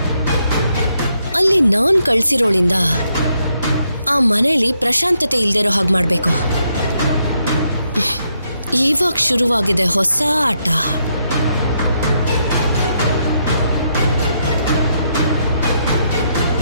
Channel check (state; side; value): inverted; both; correlation -0.77